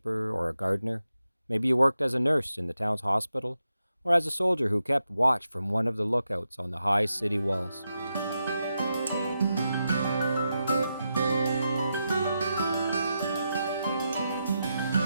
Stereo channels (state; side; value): inverted; both; correlation -0.86